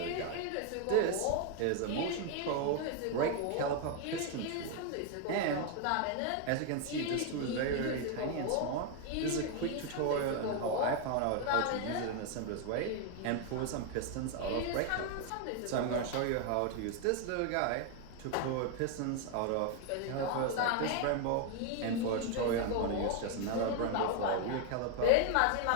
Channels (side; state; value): both; different; correlation 0.01